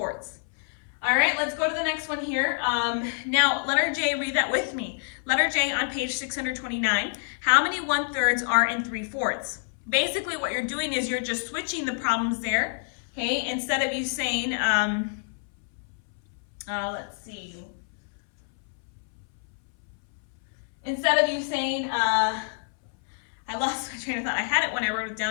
All right, let's go to the next one here. Now, letter J, read that with me. Letter J on page 629. How many 1/3 are in 3/4? Basically, what you're doing is you're just switching the problems there. Okay, instead of you saying, let's see. Instead of you saying, I lost my train of thought. I had it when I wrote it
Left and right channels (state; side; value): silent; right; 59 dB below the other